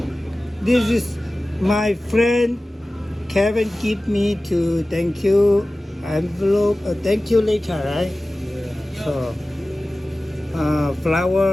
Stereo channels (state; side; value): normal; both; correlation 0.97